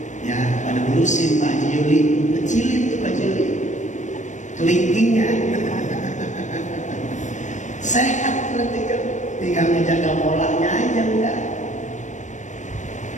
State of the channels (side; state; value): right; late; 0.35 ms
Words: ya pada ngurusin Pak Haji Yuli, kecilin tuh Pak Haji Yuli, kelingkingnya. Sehat berarti kan, tinggal menjaga polanya aja udah.